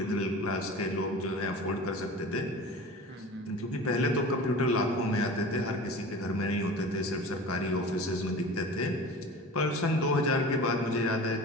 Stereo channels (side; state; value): both; normal; correlation 0.37